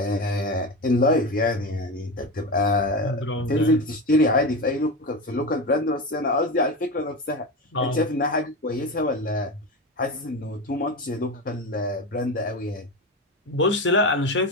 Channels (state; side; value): normal; both; correlation 0.21